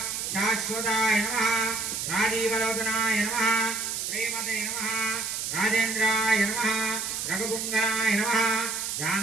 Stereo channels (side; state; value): right; noise; hiss, 3 dB below the sound